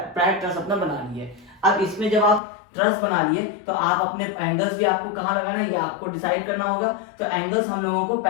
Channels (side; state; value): right; drops out; at 2.4 s